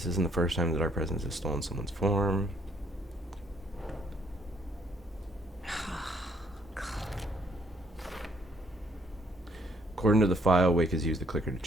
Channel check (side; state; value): both; normal; correlation 0.68